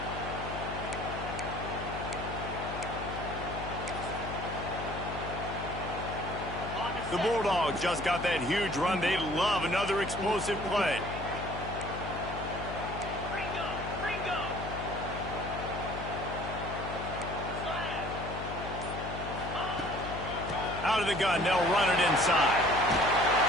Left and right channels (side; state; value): left; noise; hum, 7 dB below the sound